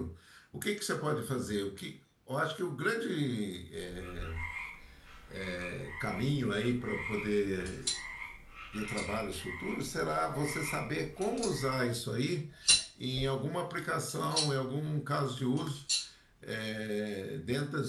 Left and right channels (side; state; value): both; identical; correlation 1.00